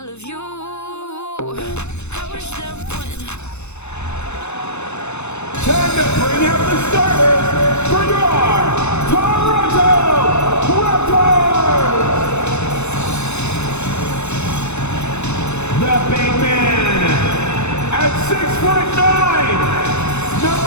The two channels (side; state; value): right; late; 0.81 ms